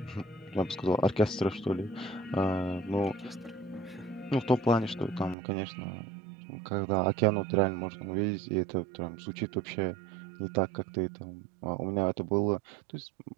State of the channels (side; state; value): left; drops out; at 5.4 s